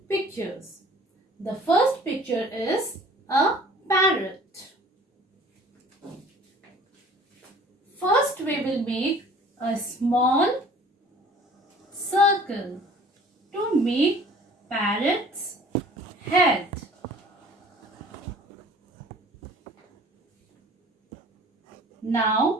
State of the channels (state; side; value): normal; both; correlation 0.49